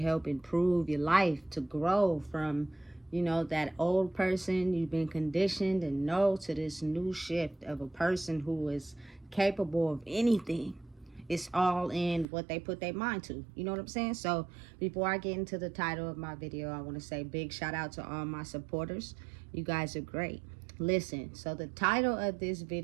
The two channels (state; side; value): drops out; left; at 12.2 s